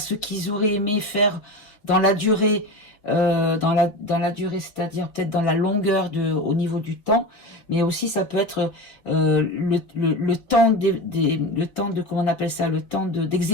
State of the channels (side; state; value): right; late; 4.5 ms